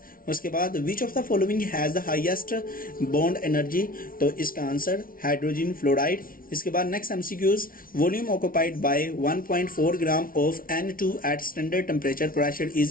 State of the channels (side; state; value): right; late; 0.42 ms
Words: उसके बाद which of the following has the highest bond energy? तो इसका answer hydrogen fluoride. इसके बाद next MCQs volume occupied by 1.4 gram of N2 at standard temperature pressure